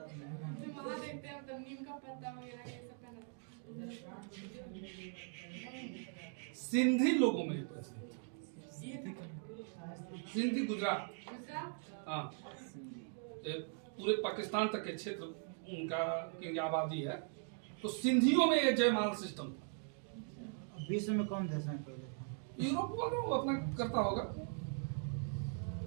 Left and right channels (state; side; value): silent; left; 51 dB below the other